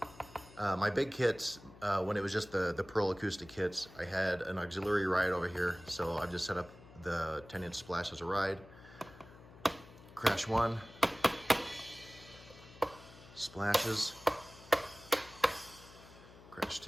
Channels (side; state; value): left; noise; hum, 20 dB below the sound